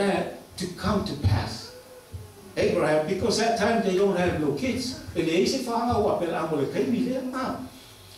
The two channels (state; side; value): identical; both; correlation 1.00